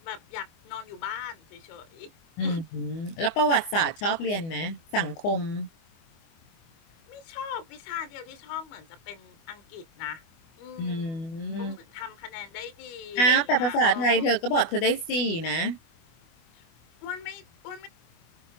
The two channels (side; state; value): right; late; 25 ms